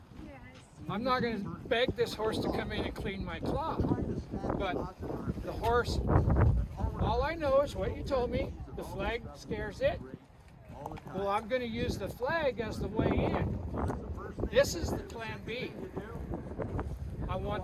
I'm not going to beg this horse to come in and clean my cloth. But the horse, all I know is what you told me. The flag scares it. Well, I'm going to use the flag as the way in. This is the plan B. I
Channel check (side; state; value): both; identical; correlation 1.00